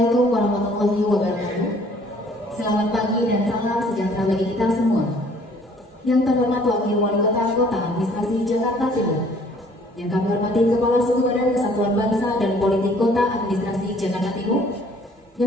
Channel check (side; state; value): both; normal; correlation 0.58